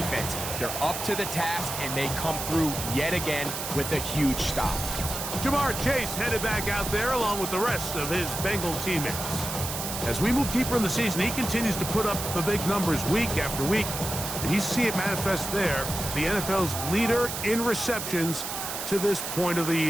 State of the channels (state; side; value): noise; right; hiss, 5 dB below the sound